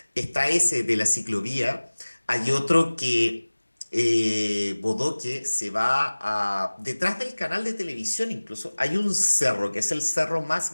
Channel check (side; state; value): both; inverted; correlation -1.00